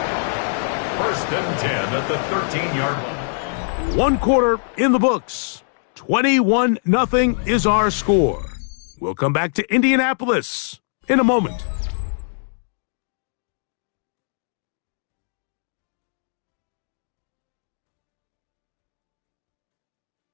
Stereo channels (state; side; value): silent; right; digital silence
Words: 1st and 10 at the 13-yard line. 1 quarter in the books. 21-0 is our score. We'll come back to Indianapolis in a moment.